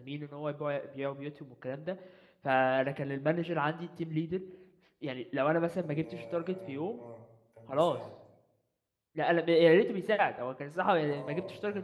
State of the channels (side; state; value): both; identical; correlation 1.00